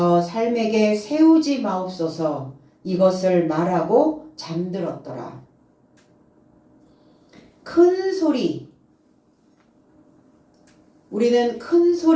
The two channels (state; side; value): identical; both; correlation 1.00